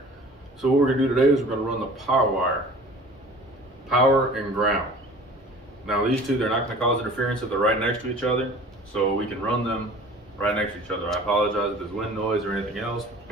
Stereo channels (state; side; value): normal; both; correlation 0.45